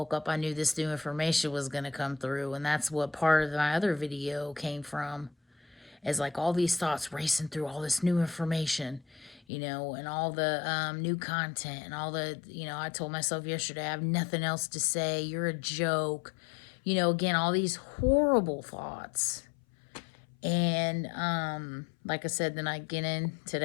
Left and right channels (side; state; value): right; drops out; at 9.4 s